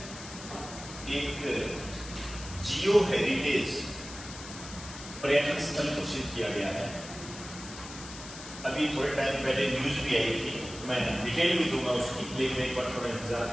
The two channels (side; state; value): left; noise; hiss, 13 dB below the sound